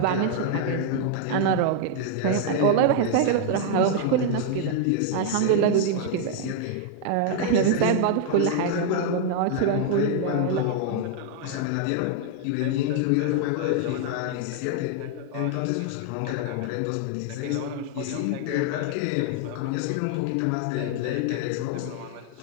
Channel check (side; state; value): both; different; correlation 0.00